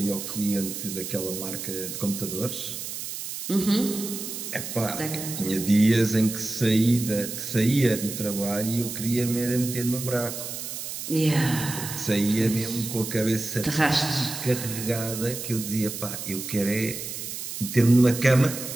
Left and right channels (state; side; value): noise; right; hiss, 7 dB below the sound